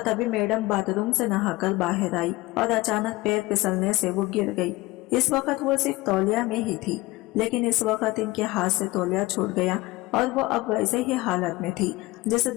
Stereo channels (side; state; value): right; quieter; 20.2 dB